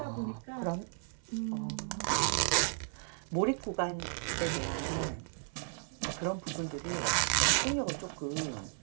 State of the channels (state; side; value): silent; left; 55 dB below the other